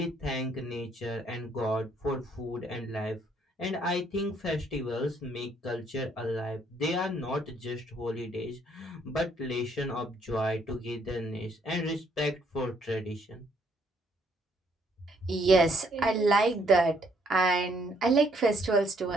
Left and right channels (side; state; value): both; normal; correlation 0.68